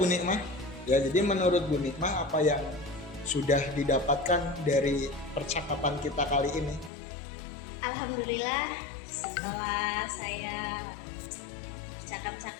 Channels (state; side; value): drops out; right; at 6.9 s